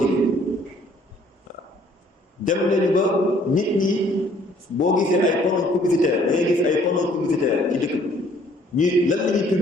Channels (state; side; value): normal; both; correlation 0.60